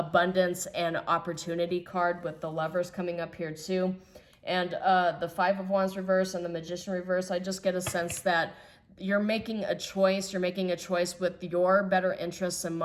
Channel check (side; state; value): both; identical; correlation 1.00